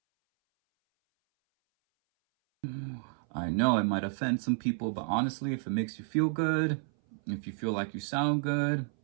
I know it might offend some people, but honestly, if it makes you feel good, if you feel like you sound good,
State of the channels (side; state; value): left; silent; 57 dB below the other